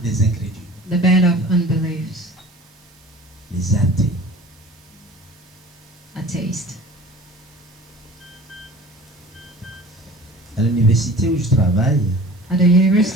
des incrédules, The band of unbeliefs, les athées. atheist. À l'université où je travaille, At the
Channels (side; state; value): right; noise; hiss, 29 dB below the sound